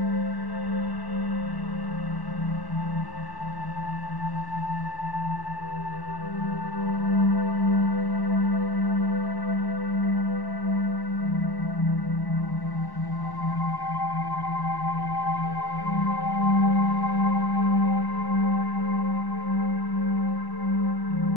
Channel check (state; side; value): late; right; 1.1 ms